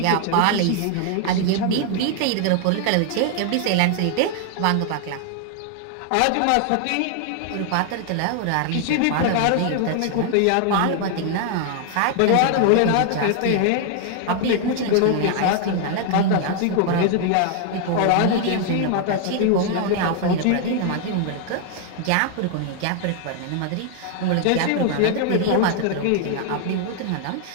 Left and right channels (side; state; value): both; different; correlation 0.00